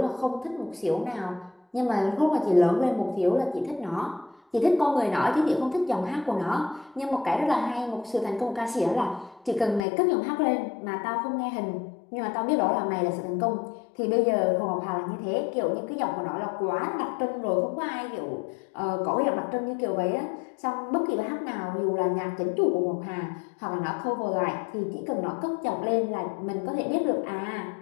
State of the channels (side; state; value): right; drops out; at 9.8 s